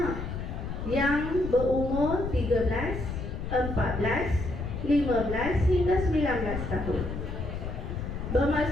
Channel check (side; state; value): left; noise; rumble, 5 dB below the sound